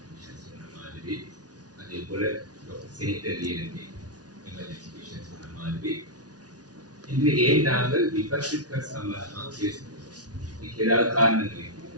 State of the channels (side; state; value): left; late; 0.68 ms